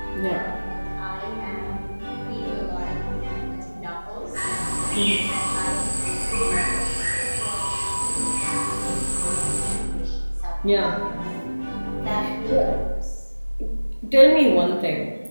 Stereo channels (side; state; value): both; inverted; correlation -1.00